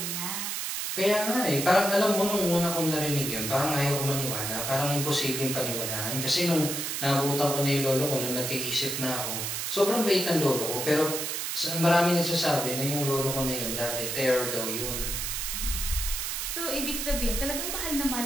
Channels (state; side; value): noise; right; hiss, 2 dB below the sound